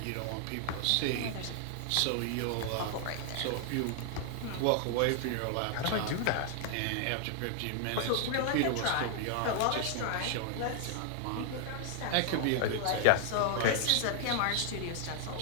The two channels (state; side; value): different; both; correlation 0.00